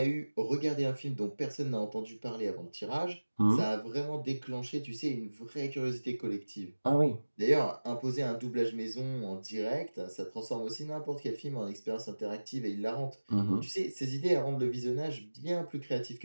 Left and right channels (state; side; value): inverted; both; correlation -1.00